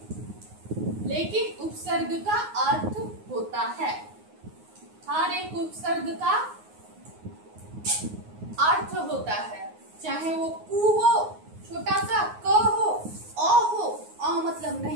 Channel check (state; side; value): late; left; 9.5 ms